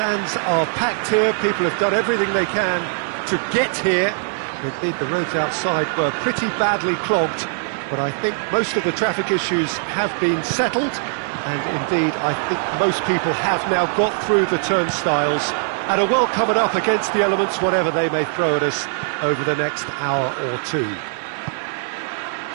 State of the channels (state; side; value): silent; left; digital silence